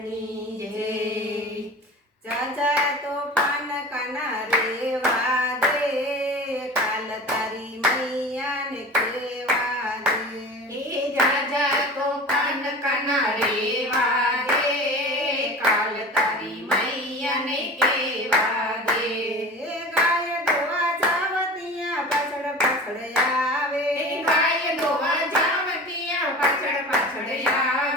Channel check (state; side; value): normal; both; correlation 0.35